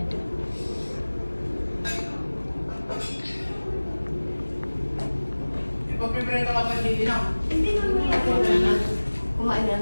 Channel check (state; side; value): inverted; both; correlation -1.00